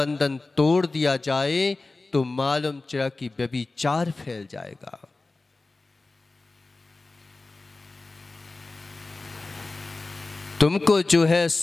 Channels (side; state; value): right; quieter; 3.4 dB